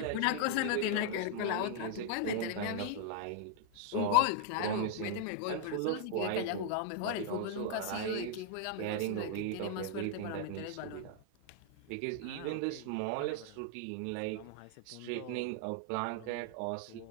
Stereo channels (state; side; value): different; both; correlation 0.00